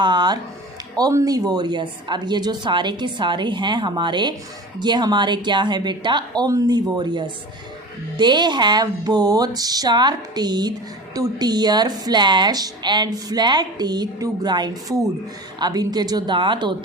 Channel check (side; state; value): both; normal; correlation 0.35